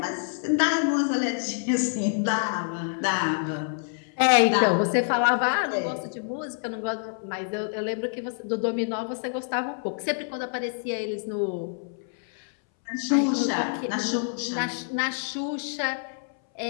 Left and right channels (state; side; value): silent; right; 60 dB below the other